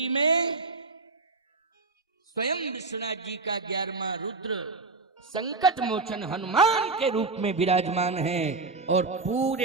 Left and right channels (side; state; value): left; quieter; 3.8 dB